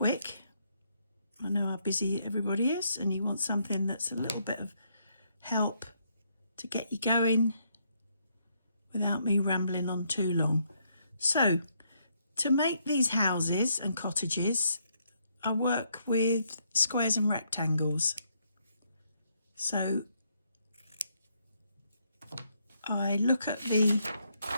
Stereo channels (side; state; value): both; inverted; correlation -0.73